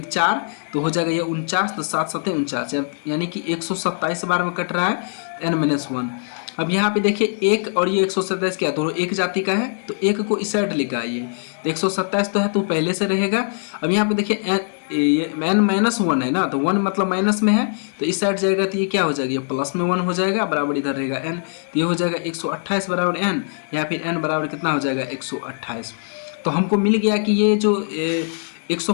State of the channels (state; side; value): silent; right; digital silence